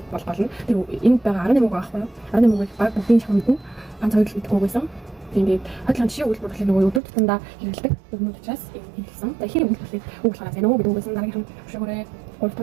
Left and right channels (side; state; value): left; drops out; at 7.0 s